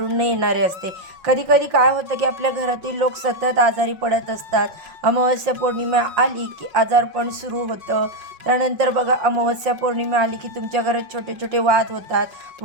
न येणारे असते. कधीकधी काय होतं की आपल्या घरातील लोक सतत आजारी पडत असतात. अमावस्या पौर्णिमा आली की आजारपण सुरू होतं. त्यानंतर बघा, अमावस्या पौर्णिमा आली की तुमच्या घरात छोटे छोटे वाद होतात.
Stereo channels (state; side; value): late; left; 5.6 ms